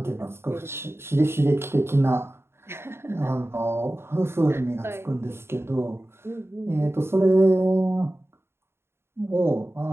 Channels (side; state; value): left; late; 0.12 ms